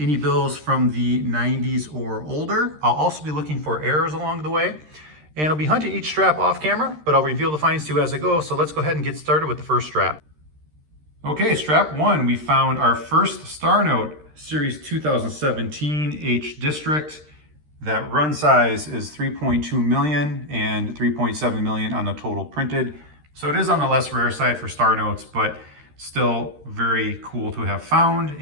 any bills from the 90s or older. I'll also be looking for errors along the way. And I'll be hunting each strap off camera, but I'll reveal the finds to you as I go. So let's go ahead and get started with the first strap. Okay, strap one, we found our first star note, series 2017 H District. That run size is 3.2 million and 3.7 million on the total printed. So it is on the less rare side for star notes, but still very cool to have found.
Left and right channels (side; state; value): left; late; 13 ms